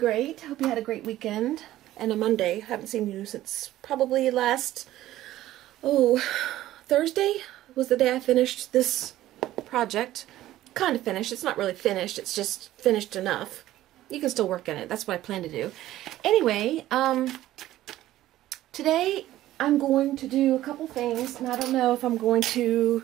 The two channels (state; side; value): quieter; left; 14.5 dB